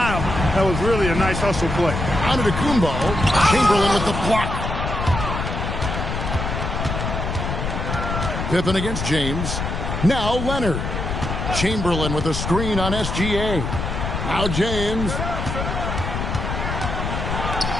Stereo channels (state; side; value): noise; left; rumble, 3 dB below the sound